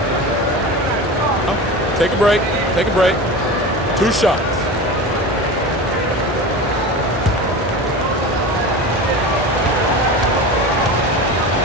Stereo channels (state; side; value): normal; both; correlation 0.30